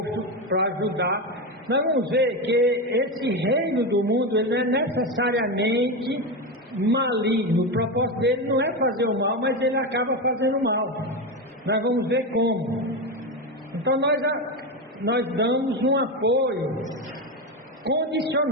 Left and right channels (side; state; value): both; normal; correlation 0.15